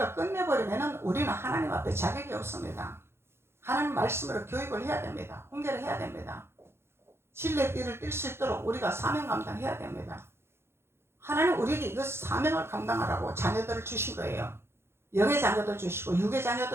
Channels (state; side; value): late; left; 0.12 ms